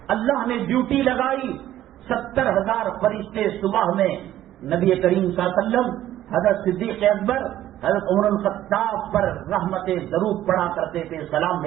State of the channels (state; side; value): quieter; left; 13.0 dB